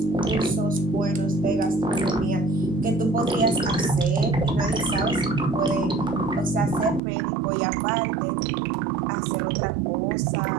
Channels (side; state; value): left; drops out; at 7.0 s